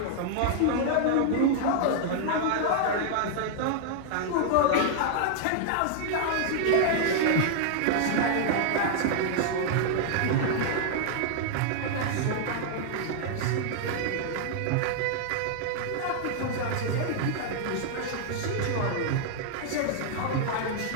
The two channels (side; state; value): both; different; correlation -0.01